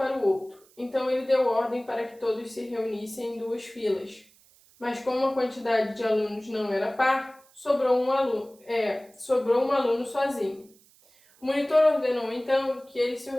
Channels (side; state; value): right; noise; hiss, 29 dB below the sound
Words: o outro. Então, ele deu ordem para que todos se reunissem em 2 filas. Mas como a quantidade de alunos não era par, sobrou um aluno sozinho. O monitor ordenou, então, que eles se